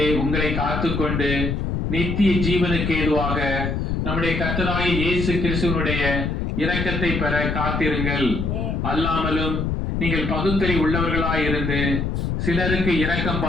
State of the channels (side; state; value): left; noise; rumble, 1 dB below the sound